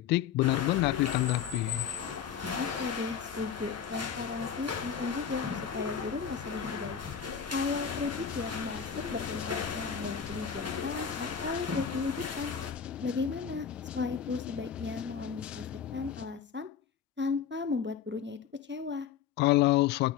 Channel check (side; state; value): right; quieter; 7.8 dB